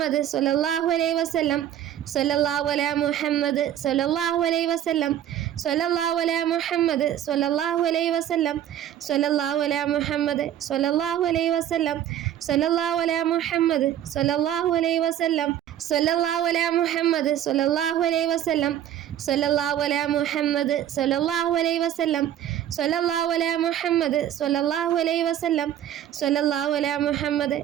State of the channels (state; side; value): quieter; left; 11.1 dB